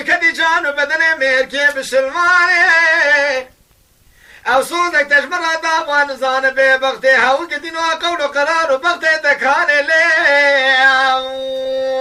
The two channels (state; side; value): identical; both; correlation 1.00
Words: جانو بدن مرکی بسلمانه او سودک تشمرا داوان زان بی بغتی هاو گدینو قولو قرارو بغتی دکانه لی